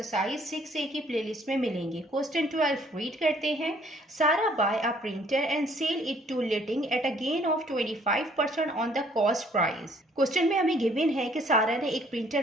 6A की प्लेलिस्ट में मिलेंगे। क्वेश्चन 12 रीड करते हैं। Sara buy a printer and sell it to लिटिंग at a gain of 25% on the cost price. Question में हमें गिवन है कि सारा ने एक प्रिंटर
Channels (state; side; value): normal; both; correlation 0.61